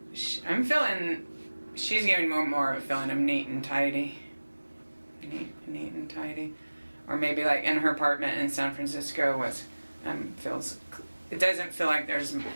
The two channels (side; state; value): both; inverted; correlation -1.00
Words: she's giving more of a feeling of neat and tidy. Neat and tidy. Or maybe like in her apartment in San Francisco it doesn't feel like there's a